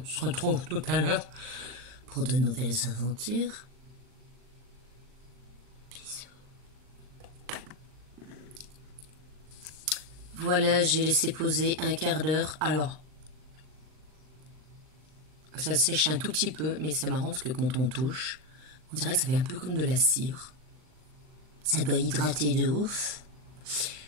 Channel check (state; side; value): late; left; 39 ms